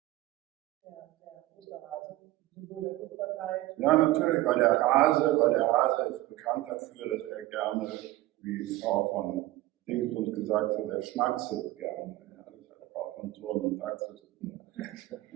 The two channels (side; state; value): left; quieter; 17.1 dB